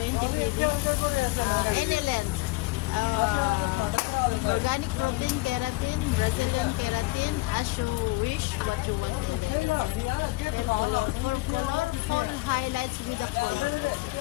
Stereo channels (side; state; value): right; quieter; 21.6 dB